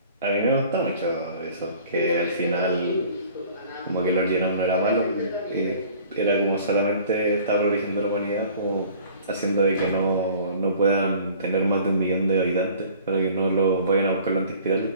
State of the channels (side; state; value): both; inverted; correlation -0.50